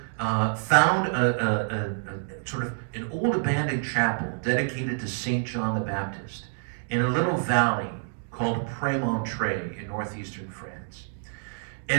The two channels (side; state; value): left; silent; digital silence